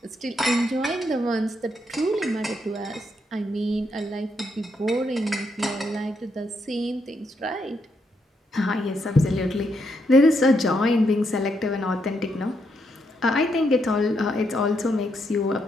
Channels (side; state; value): both; normal; correlation 0.78